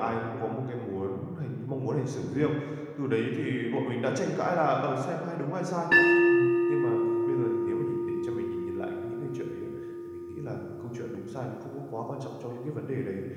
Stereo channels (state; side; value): identical; both; correlation 1.00